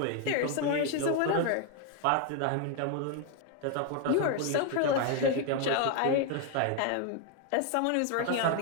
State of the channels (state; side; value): different; both; correlation 0.01